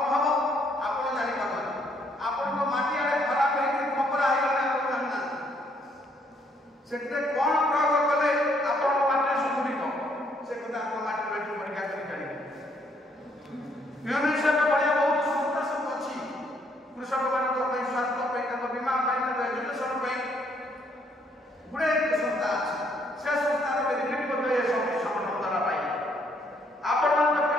ନ ହେବ ଆପଣ ଜାଣିପାରୁନାହାନ୍ତି। ଆପଣଙ୍କ ମାଟି ଆଡ଼େ ଖରାପ ହେଇକି ଖପରା ହେଇଗଲେ ଆପଣ ଜାଣିନାହାନ୍ତି। ସେଥିରେ କ'ଣ ପ୍ରୟୋଗ କଲେ ଆପଣଙ୍କ ମାଟିରେ ସୁଧୁରିବ ସେ କଥା ଆପଣ ମାଟି ପରୀକ୍ଷା କରି ଜାଣିବେ। ୟୁନିସେଫ୍ ଭଳିଆ ବହୁତ ସଂସ୍ଥା ସବୁ ଅଛି କୃଷକମାନଙ୍କ ପାଇଁ, ସ୍ୱାସ୍ଥ୍ୟ ପାଇଁ, ତାଙ୍କ ବୀମା ପାଇଁ, ତାଙ୍କ ଏଜୁକେସନ୍ ପାଇଁ ଗୁଡ଼ାଏ ସଂସ୍ଥା ଅଛି। ସେ ସଂସ୍ଥାର ବେନିଫିଟ୍ ମଧ୍ୟ ଏ ସବୁ ସଂଗଠନ ଦ୍ୱାରା ପାଇ ଆପଣମାନଙ୍କ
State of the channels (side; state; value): both; normal; correlation 0.69